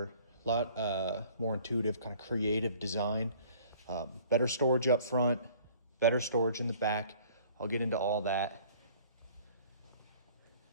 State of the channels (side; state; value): both; inverted; correlation -0.52